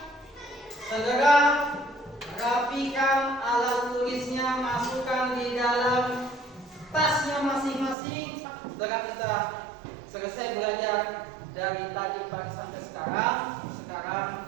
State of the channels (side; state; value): left; drops out; at 8.0 s